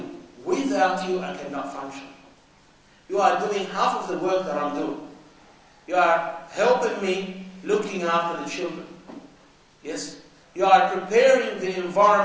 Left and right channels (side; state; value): both; identical; correlation 1.00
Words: without you, I cannot function. You are doing half of the work that I'm doing. You are helping me looking after the children. Yes? You are preparing the